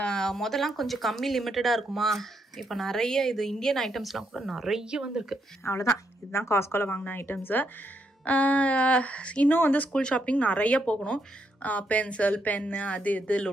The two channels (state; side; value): normal; both; correlation 0.78